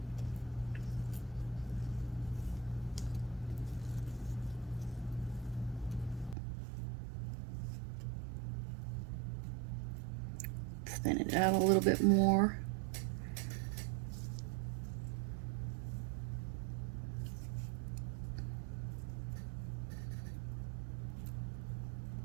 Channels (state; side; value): drops out; left; at 6.4 s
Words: Thin it out a little bit more.